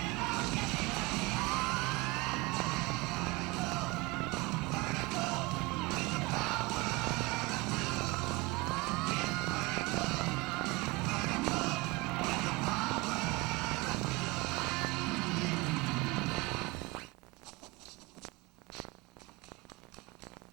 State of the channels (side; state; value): left; quieter; 23.2 dB